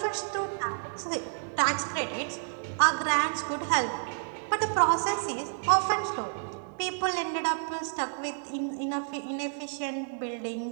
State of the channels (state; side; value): silent; left; digital silence